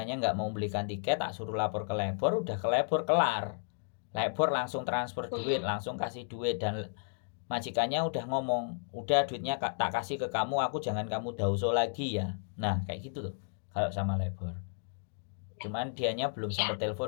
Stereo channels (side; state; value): right; silent; digital silence